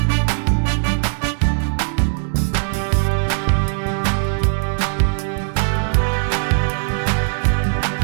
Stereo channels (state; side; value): silent; left; digital silence